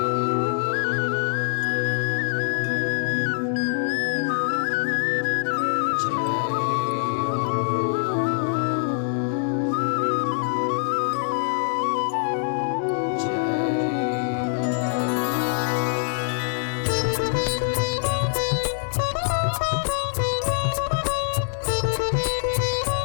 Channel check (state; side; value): silent; right; digital silence